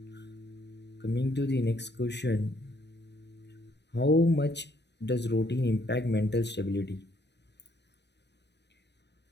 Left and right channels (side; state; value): right; late; 0.50 ms